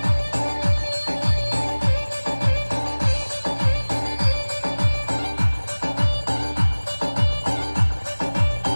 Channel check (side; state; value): both; inverted; correlation -1.00